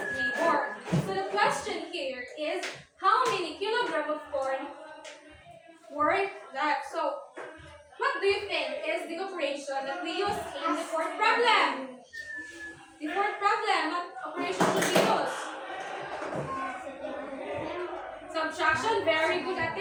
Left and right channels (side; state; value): both; identical; correlation 1.00